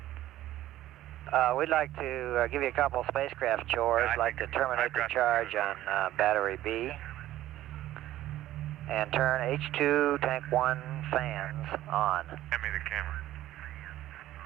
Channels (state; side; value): quieter; left; 14.2 dB